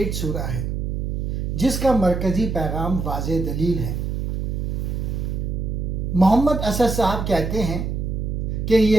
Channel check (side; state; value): right; noise; hum, 2 dB below the sound